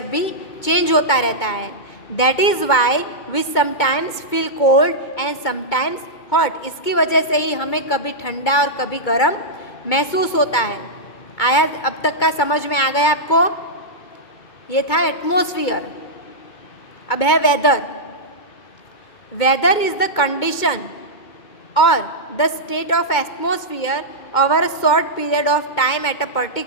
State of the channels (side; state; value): right; late; 2.2 ms